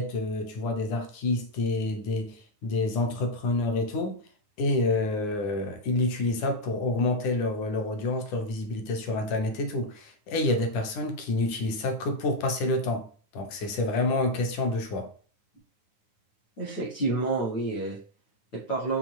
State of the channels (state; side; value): late; right; 9.6 ms